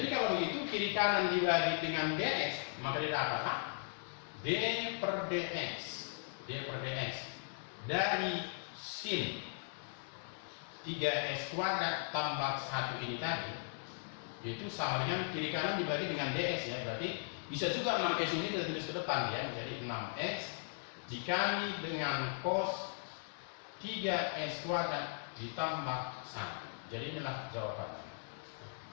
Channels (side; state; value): right; silent; 52 dB below the other